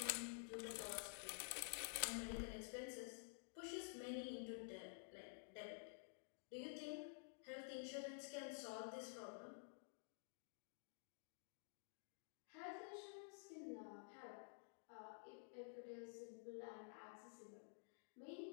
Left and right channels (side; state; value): right; silent; digital silence